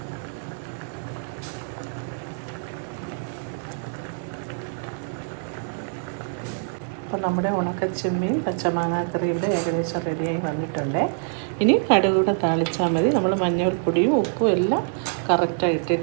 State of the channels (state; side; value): silent; left; digital silence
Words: അപ്പോൾ നമ്മുടെ ഉണക്കച്ചെമ്മീൻ പച്ചമാങ്ങാക്കറിയുടെ ഏകദേശം റെഡിയായി വന്നിട്ടുണ്ട്. ഇനി കടുകൂടെ താളിച്ചാൽ മതി. നമ്മൾ മഞ്ഞൾപ്പൊടിയും ഉപ്പും എല്ലാം കറക്റ്റായി